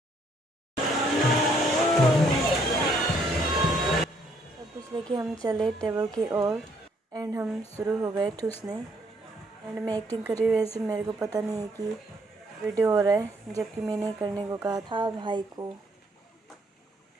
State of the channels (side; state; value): both; normal; correlation 0.67